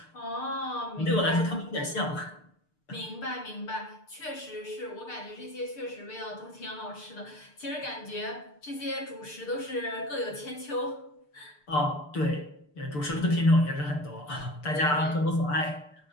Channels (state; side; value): late; right; 6.7 ms